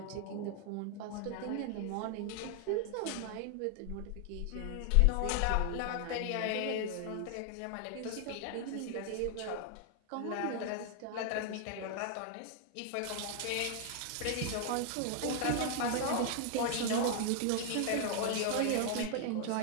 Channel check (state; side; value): different; both; correlation 0.00